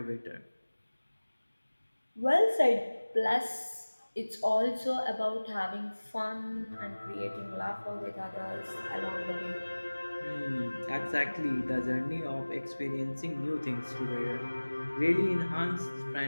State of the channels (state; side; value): inverted; both; correlation -1.00